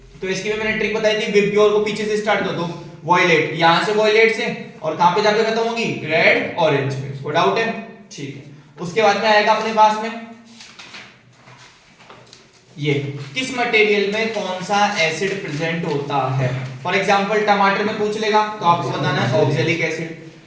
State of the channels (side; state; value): both; identical; correlation 1.00